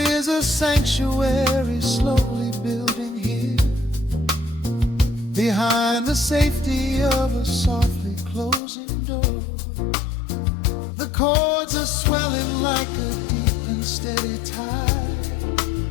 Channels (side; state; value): right; drops out; at 8.6 s